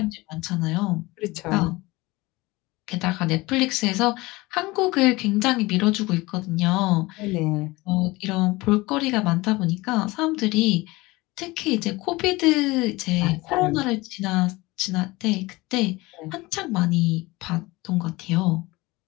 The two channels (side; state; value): right; quieter; 21.6 dB